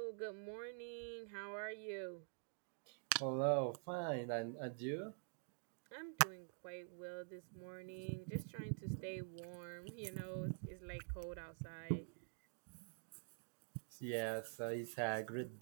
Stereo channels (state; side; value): silent; left; digital silence